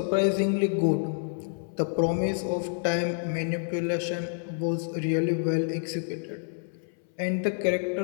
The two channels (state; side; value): silent; right; 59 dB below the other